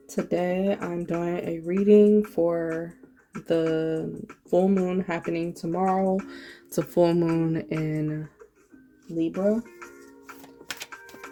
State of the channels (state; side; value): identical; both; correlation 1.00